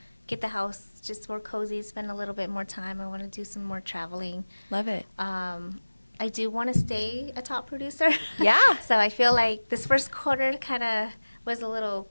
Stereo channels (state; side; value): inverted; both; correlation -1.00